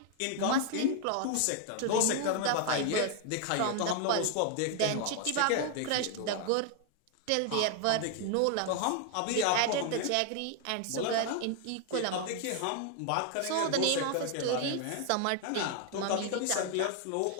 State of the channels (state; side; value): different; both; correlation 0.00